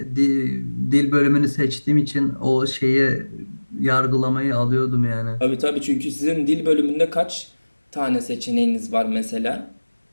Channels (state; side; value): inverted; both; correlation -1.00